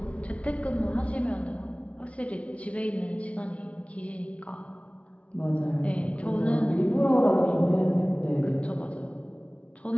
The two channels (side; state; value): right; late; 0.063 ms